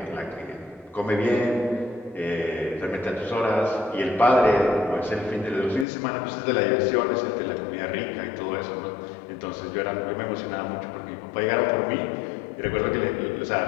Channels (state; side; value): drops out; right; at 5.9 s